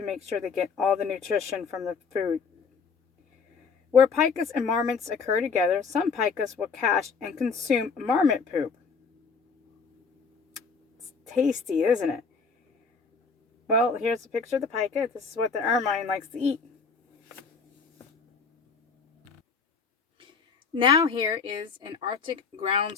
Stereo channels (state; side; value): quieter; right; 5.2 dB